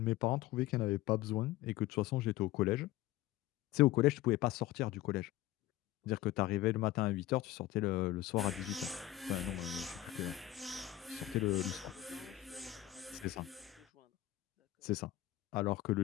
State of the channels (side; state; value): right; quieter; 14.8 dB